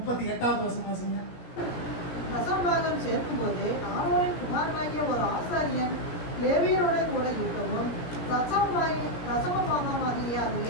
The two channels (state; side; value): late; right; 17 ms